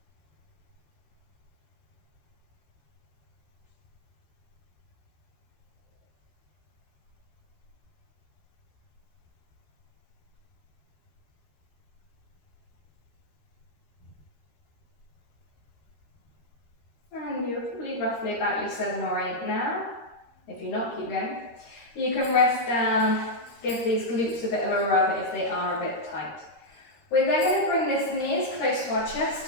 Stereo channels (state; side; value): late; right; 13 ms